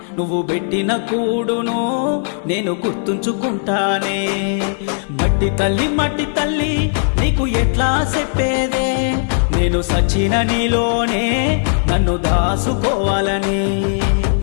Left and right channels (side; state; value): right; silent; digital silence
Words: నువ్వు పెట్టిన కూడును నేను గుర్తుంచుకుంటానే. మట్టి తల్లి నీకు ఎట్లా చెప్పేదే, నేను సచిన నీలోనే నన్ను దాసుకోవాలని.